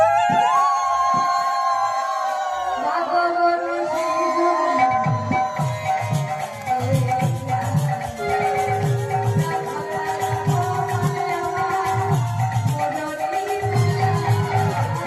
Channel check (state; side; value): identical; both; correlation 1.00